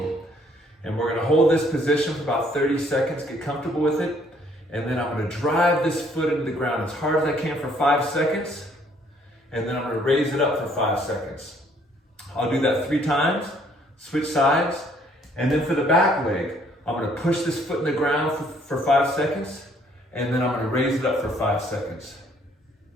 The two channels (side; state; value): both; normal; correlation 0.64